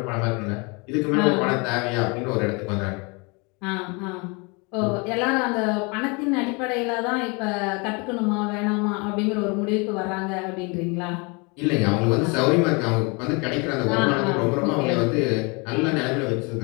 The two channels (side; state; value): right; quieter; 30.0 dB